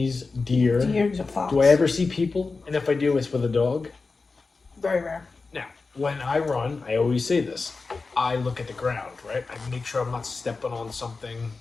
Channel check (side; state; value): right; quieter; 4.1 dB